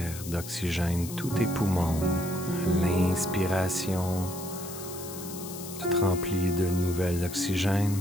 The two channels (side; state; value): left; noise; hiss, 12 dB below the sound